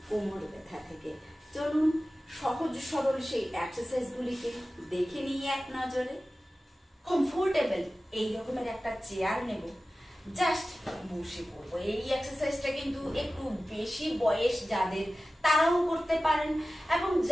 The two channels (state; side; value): normal; both; correlation 0.95